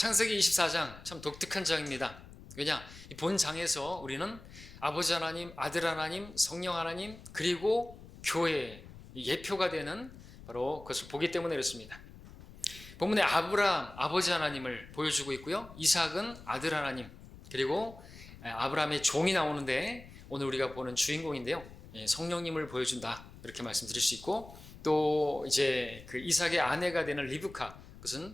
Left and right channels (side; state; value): left; noise; rumble, 17 dB below the sound